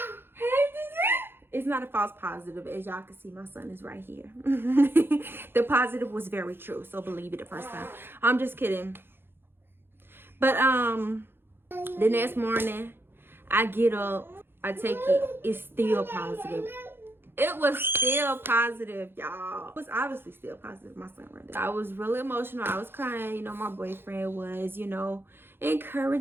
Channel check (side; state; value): left; late; 0.10 ms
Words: It's not a false positive. As y'all can see, my son is right here. The positive was very true, so believe it the first time. I'm just kidding. But the next morning, I get up, I take it, it's still positive. It was still positive, y'all. It was obviously still positive, my son right there. I was really emotional. I was crying. You know, my boyfriend was, you know,